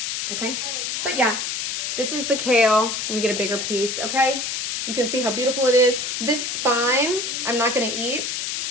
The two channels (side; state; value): left; noise; hiss, 2 dB below the sound